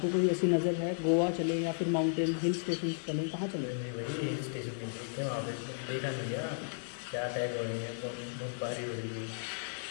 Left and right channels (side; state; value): right; silent; digital silence